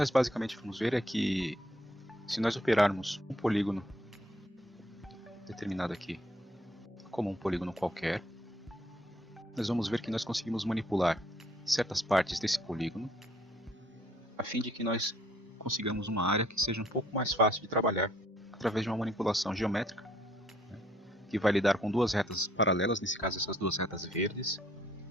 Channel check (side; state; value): both; normal; correlation 0.65